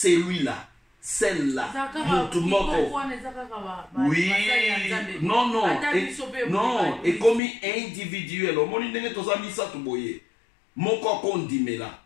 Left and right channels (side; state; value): right; drops out; at 7.4 s